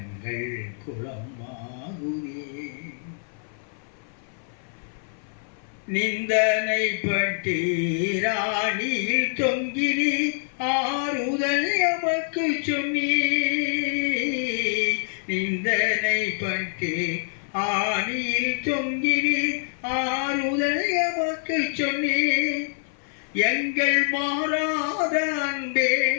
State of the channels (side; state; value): right; silent; 56 dB below the other